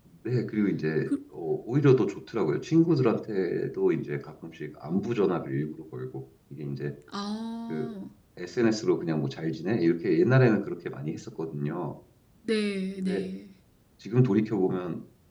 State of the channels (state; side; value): identical; both; correlation 1.00